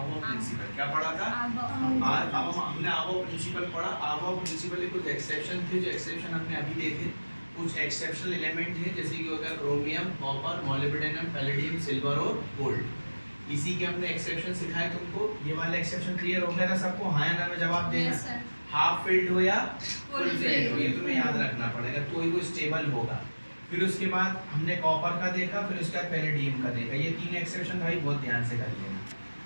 प्रिंसिपल। क्या पढ़ा था? अब हमने आवो प्रिंसिपल पढ़ा। आवो प्रिंसिपल के कुछ एक्सेप्शन थे, जो एक्सेप्शन हमने अभी देखे। कुछ एक्सेप्शनल एलिमेंट हैं, जैसे कि हो गया chromium, copper, molybdenum, palladium, silver और गोल्ड। इसी के हमने एक्सेप्शन सिखाए तुमको। ये वाला एक्सेप्शन क्लियर हो गया था सबको? हाँ या ना में जवाब देना। हाफ फिल्ड हो या फुल फिल्ड हो, ये तुम्हें याद रखना पड़ेगा, तो ही वो स्टेबल होगा। फिर उसके बाद हमने कॉपर का देखा, फिर उसके बाद पैलेडियम का देखा। ये तीन एक्सेप्शन भाई बहुत ध्यान से कर लेना।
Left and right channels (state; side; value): inverted; both; correlation -1.00